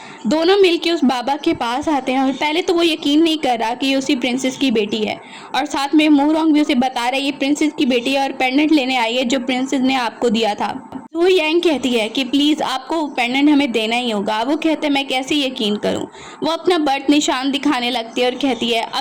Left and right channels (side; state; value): both; identical; correlation 1.00